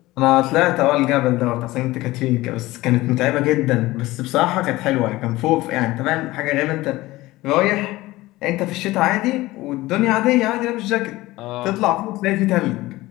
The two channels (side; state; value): right; quieter; 18.6 dB